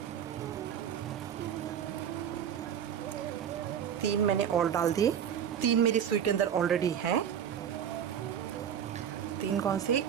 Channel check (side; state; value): left; quieter; 8.8 dB